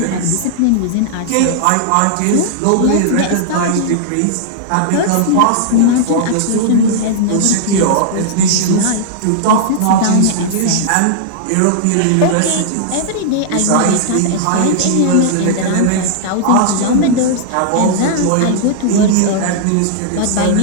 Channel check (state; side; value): different; both; correlation -0.01